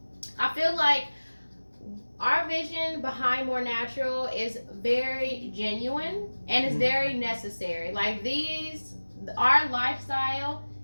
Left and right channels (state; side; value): inverted; both; correlation -1.00